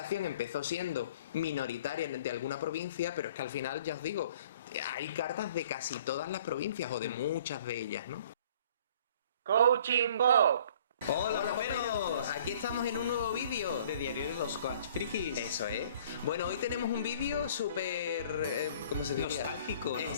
empezó siendo minoritaria de alguna provincia, pero es que al final, ya os digo, hay cartas de casi todas las provincias o de muchas de ellas, ¿no? Coaching Bob. Hola, Poperos, aquí estamos en un nuevo vídeo de Diario de los Coach Frikis. Eso es. Bueno, hoy tenemos un vídeo súper... ¿cómo se diría? Nostálgico, ¿no?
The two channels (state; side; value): inverted; both; correlation -0.54